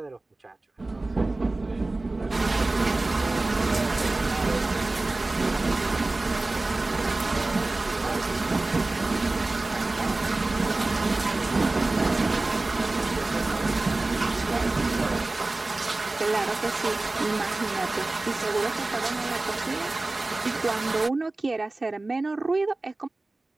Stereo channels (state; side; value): quieter; left; 3.0 dB